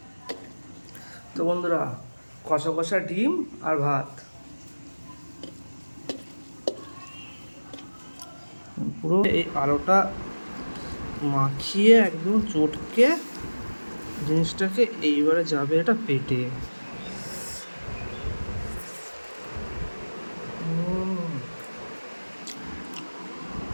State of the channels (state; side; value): inverted; both; correlation -1.00